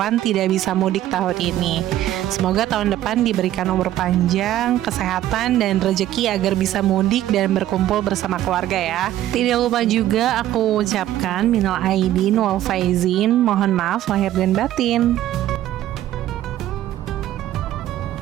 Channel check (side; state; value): left; quieter; 13.1 dB